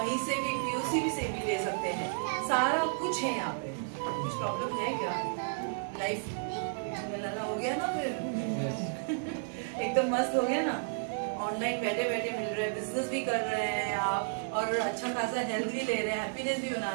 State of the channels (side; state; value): left; silent; digital silence